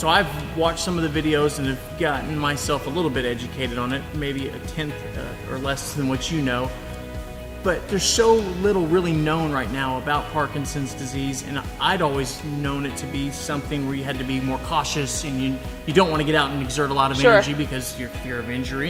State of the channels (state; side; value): identical; both; correlation 1.00